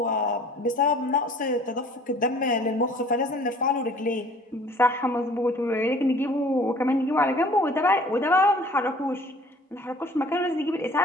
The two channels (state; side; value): normal; both; correlation 0.51